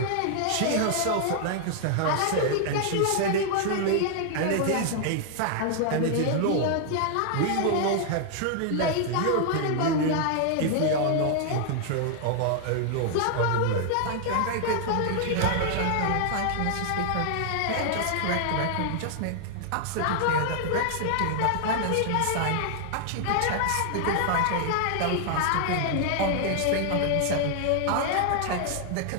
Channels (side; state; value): both; different; correlation -0.01